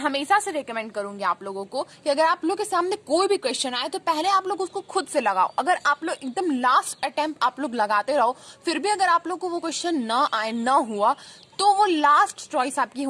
से रिकमेंड करूंगी आप लोगों को कि अगर आप लोग के सामने कोई भी क्वेश्चन आए तो पहले आप लोग उसको खुद से लगाओ. अगर आप लोग एकदम लास्ट अटेम्प्ट आप लोग लगाते रहो, फिर भी अगर आप लोग को वो क्वेश्चन ना आए, ना हुआ, तो वो लास्ट चॉइस आपकी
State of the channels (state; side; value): identical; both; correlation 1.00